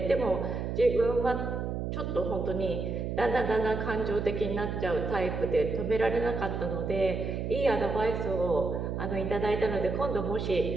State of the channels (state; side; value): noise; right; hum, 3 dB below the sound